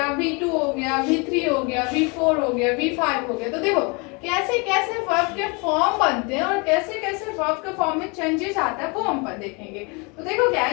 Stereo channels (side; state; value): right; quieter; 30.5 dB